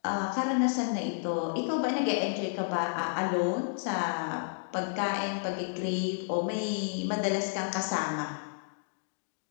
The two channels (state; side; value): silent; right; digital silence